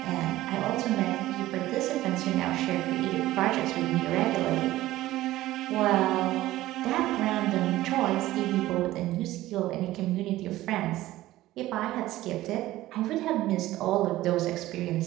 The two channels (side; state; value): left; quieter; 16.0 dB